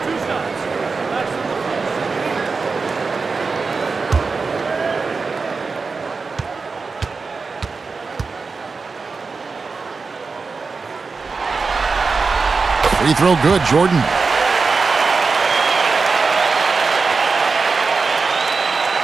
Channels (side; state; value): left; quieter; 4.5 dB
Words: Free throw good, Jordan.